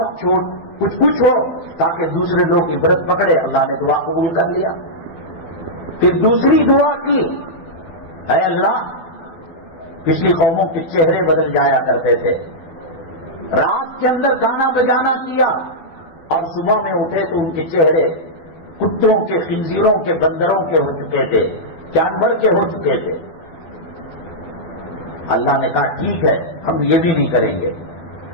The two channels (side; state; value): right; late; 12 ms